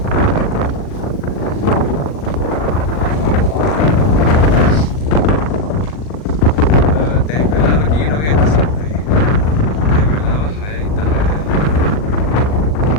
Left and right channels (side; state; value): right; late; 39 ms